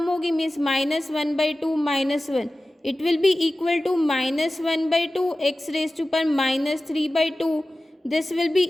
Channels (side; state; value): both; normal; correlation 0.96